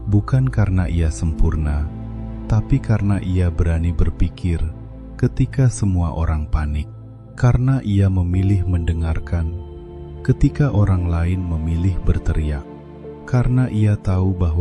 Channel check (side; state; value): both; identical; correlation 1.00